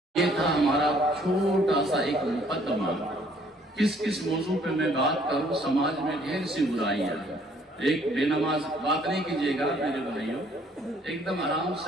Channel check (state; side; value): normal; both; correlation 0.62